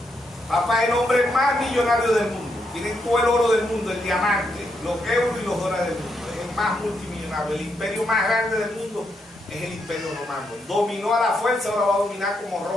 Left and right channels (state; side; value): normal; both; correlation 0.80